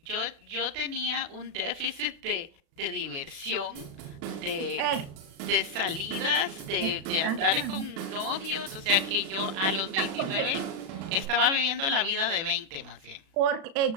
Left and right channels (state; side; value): late; left; 36 ms